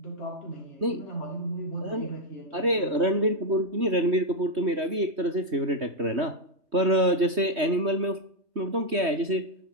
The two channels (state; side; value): late; left; 3.2 ms